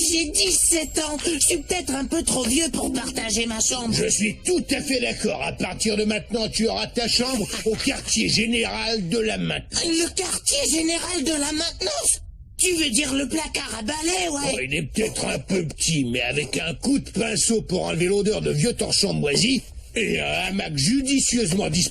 j'ai 17 ans. Je suis peut-être un peu trop vieux pour partager ma chambre. Je suis tout à fait d'accord. À partir de maintenant, tu auras ta chambre au quartier général de la maintenance. Le quartier général de la maintenance? Tu veux dire le placard à balai, ouais? Oh, il est peut-être un peu petit, mais avec un coup de pinceau pour enlever l'odeur de vieux torchons moisis et un hamac judicieusement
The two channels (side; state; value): both; identical; correlation 1.00